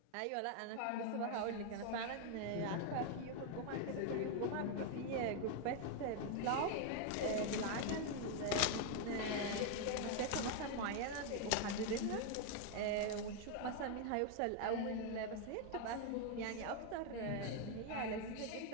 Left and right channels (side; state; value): both; different; correlation 0.00